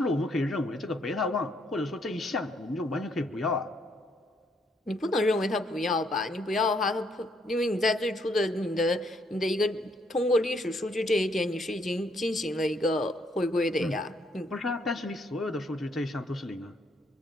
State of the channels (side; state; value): both; normal; correlation 0.71